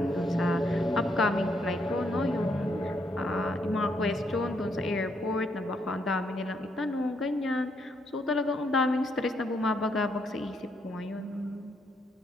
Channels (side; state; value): both; normal; correlation 0.75